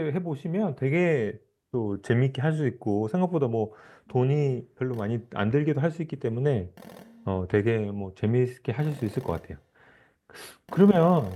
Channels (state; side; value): identical; both; correlation 1.00